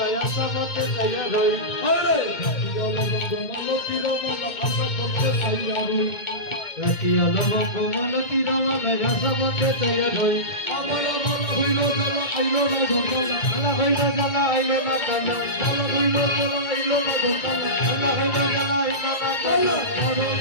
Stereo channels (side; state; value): right; late; 2.2 ms